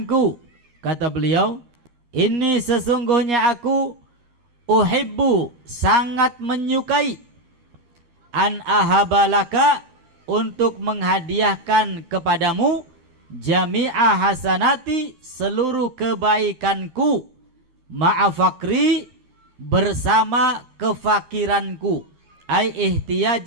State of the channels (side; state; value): left; late; 13 ms